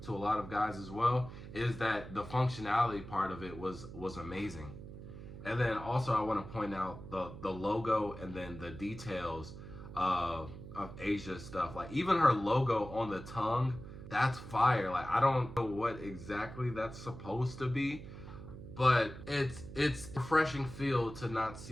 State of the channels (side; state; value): right; noise; hum, 12 dB below the sound